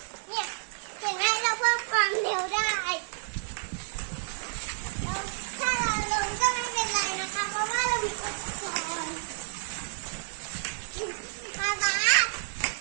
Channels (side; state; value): left; silent; digital silence